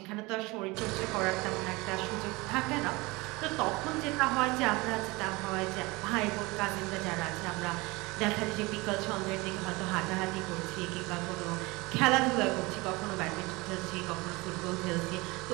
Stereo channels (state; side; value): quieter; left; 23.6 dB